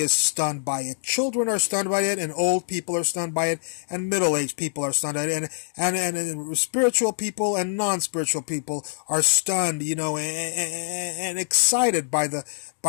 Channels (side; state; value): right; silent; digital silence